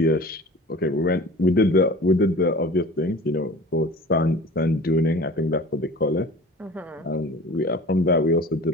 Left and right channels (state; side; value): normal; both; correlation 0.41